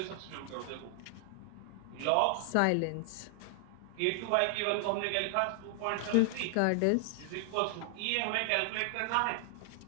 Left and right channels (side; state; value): both; different; correlation 0.00